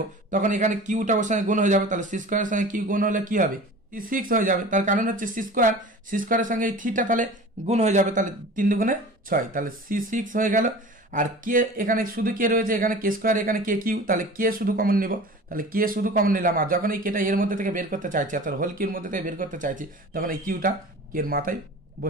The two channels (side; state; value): both; normal; correlation 0.39